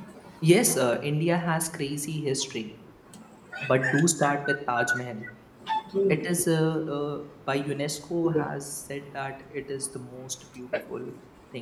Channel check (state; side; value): identical; both; correlation 1.00